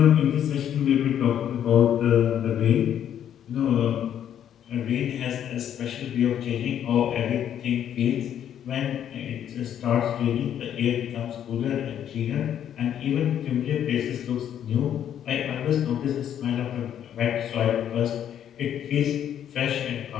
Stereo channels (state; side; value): quieter; right; 9.9 dB